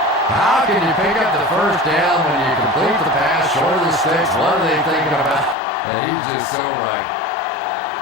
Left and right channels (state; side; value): drops out; right; at 5.6 s